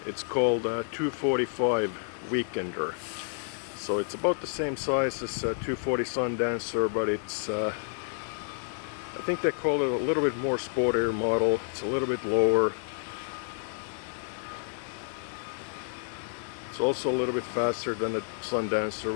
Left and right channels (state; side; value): silent; right; 58 dB below the other